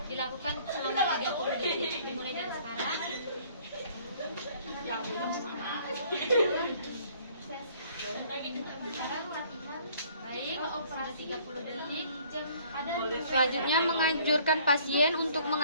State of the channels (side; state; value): both; inverted; correlation -0.57